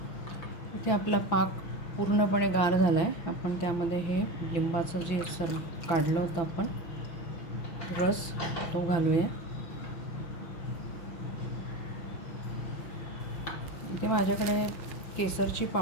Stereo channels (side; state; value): right; late; 5.9 ms